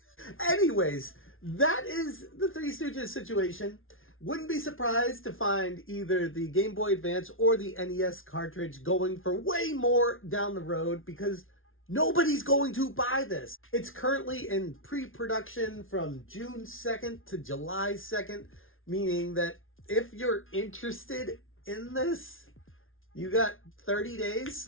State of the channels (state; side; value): late; right; 0.59 ms